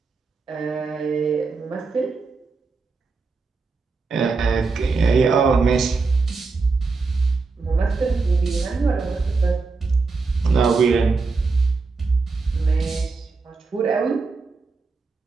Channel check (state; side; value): quieter; left; 4.2 dB